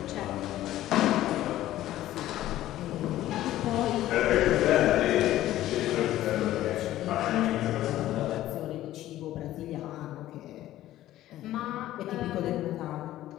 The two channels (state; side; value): quieter; right; 14.2 dB